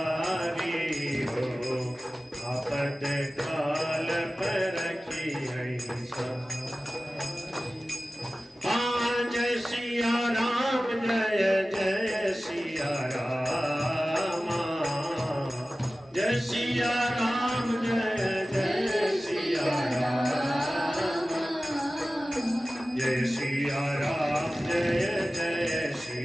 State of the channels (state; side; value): normal; both; correlation 0.96